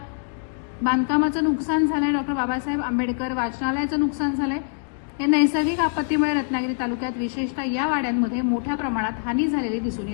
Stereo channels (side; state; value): right; silent; digital silence